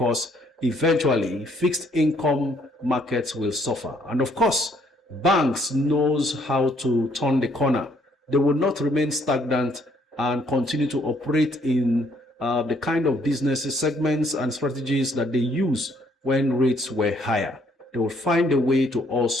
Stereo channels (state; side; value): normal; both; correlation 0.66